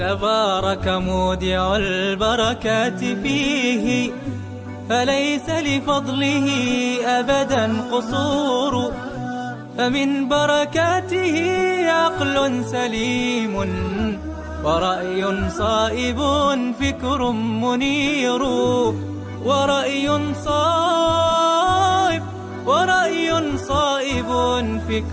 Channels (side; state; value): both; identical; correlation 1.00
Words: مودع البركات فيه، فليس لفضله أبدا قصور. فمن بركاته عقل سليم، ورأي صائب فكر منير. ورأي صائب